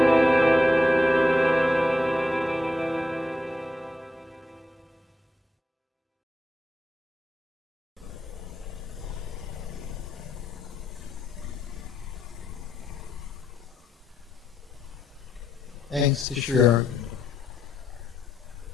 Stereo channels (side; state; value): both; normal; correlation 0.82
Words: Thanks to Sri Auroville.